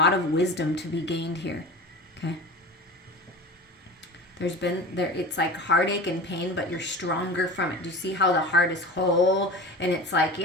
of wisdom to be gained here. Okay? It's like heartache and pain, but you're stronger from it. Do you see how the heart is whole? And it's like,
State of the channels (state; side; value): normal; both; correlation 0.34